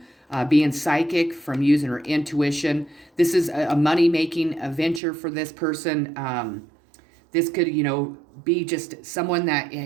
being psychic, from using her intuition. This is a money-making venture for this person. This could, be just someone that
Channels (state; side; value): drops out; left; at 5.0 s